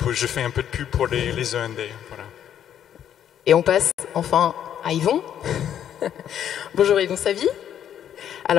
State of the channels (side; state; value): right; quieter; 9.8 dB